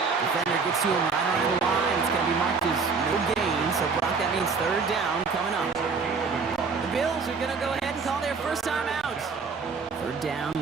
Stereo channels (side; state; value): left; quieter; 4.9 dB